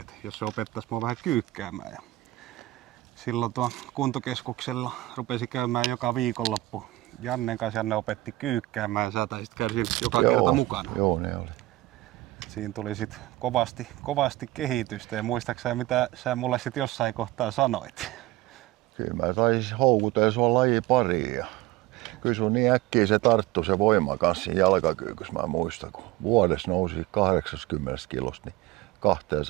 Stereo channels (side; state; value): left; quieter; 18.2 dB